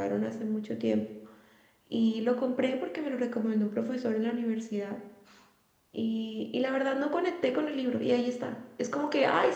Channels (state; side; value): identical; both; correlation 1.00